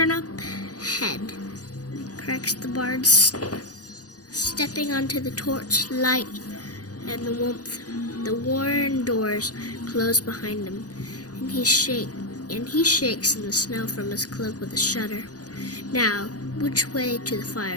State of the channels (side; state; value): right; late; 0.68 ms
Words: head, cracks the bard, stepping onto the torch light and the warmth. The worn doors close behind him, and he shakes in the snow from his cloak with a shudder. Now, which way to the